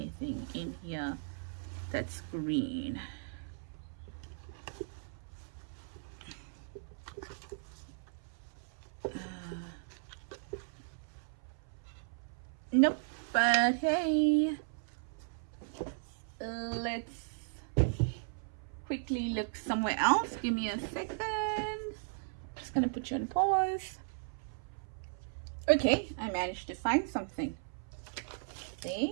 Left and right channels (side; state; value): left; silent; 53 dB below the other